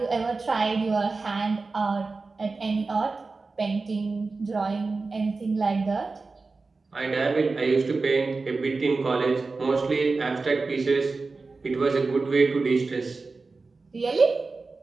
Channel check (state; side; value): quieter; left; 3.9 dB